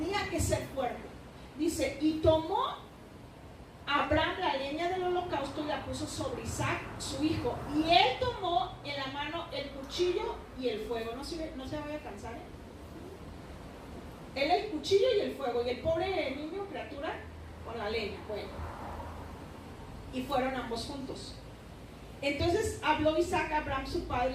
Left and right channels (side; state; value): both; identical; correlation 1.00